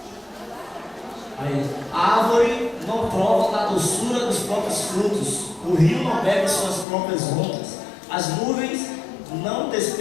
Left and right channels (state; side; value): drops out; right; at 6.9 s